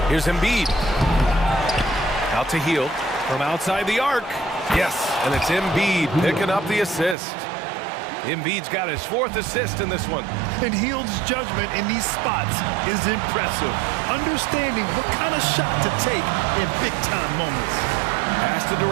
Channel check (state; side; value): drops out; left; at 7.2 s